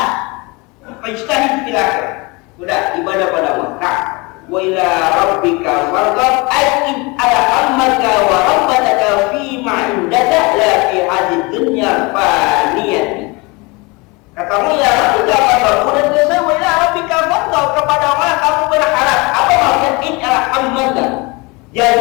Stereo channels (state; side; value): quieter; right; 26.4 dB